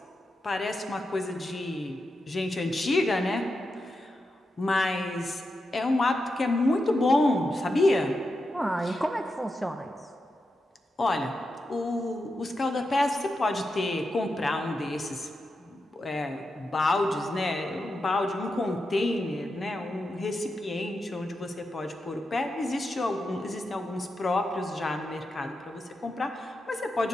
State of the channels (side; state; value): both; normal; correlation 0.88